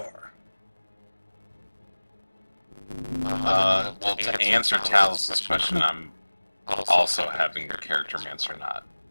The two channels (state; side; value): inverted; both; correlation -1.00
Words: Well, to answer Talos' question, I'm also having the character mancer not